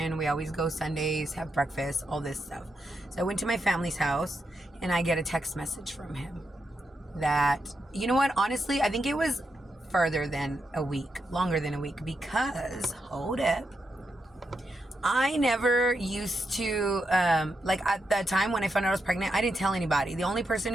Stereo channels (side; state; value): both; normal; correlation 0.84